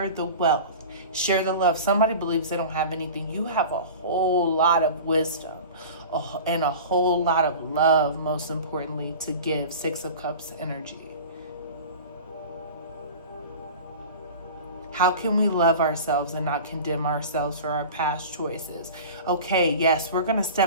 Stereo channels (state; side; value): inverted; both; correlation -0.36